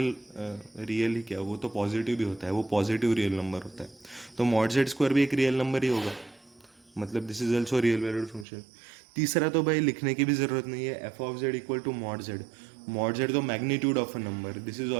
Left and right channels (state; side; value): drops out; left; at 8.5 s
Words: ही क्या, वो तो पॉजिटिव भी होता है, वो पॉजिटिव रियल नंबर होता है, तो मॉड जेड स्क्वायर भी एक रियल नंबर ही होगा, मतलब this is also real valued function. तीसरा तो भाई लिखने की भी जरूरत नहीं है, f of z equal to mod z, mod z तो magnitude of a number, this is